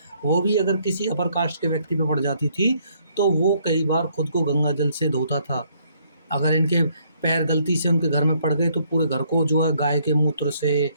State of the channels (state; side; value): inverted; both; correlation -0.68